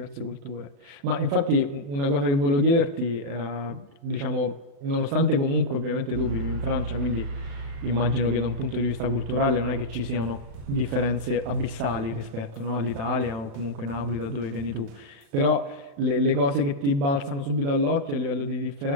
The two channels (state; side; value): late; left; 36 ms